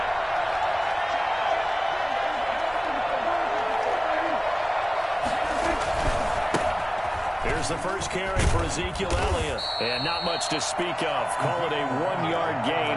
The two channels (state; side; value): identical; both; correlation 1.00